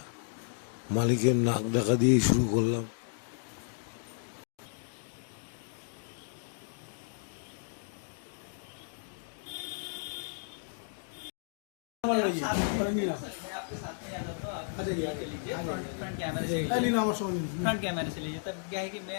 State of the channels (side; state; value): right; silent; digital silence